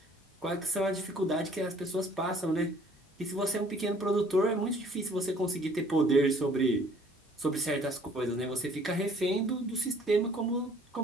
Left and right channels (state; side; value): normal; both; correlation 0.57